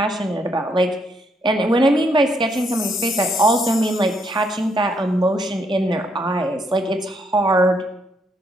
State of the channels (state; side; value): normal; both; correlation 0.74